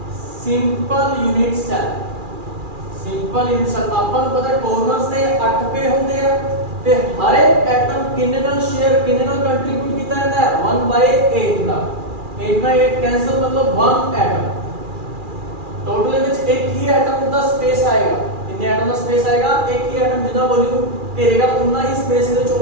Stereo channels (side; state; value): left; late; 2.4 ms